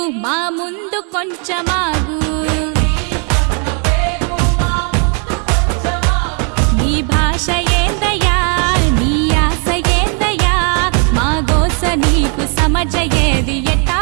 మా ముందు కొంచెమాగు నీ భాష ఏందయ్యా నీ ఆశ ఏందయ్యా మా గోస నీకు సమజయేది ఎట్టా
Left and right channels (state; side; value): quieter; left; 38.8 dB